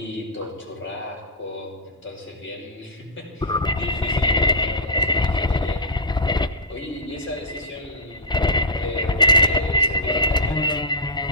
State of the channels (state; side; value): normal; both; correlation -0.12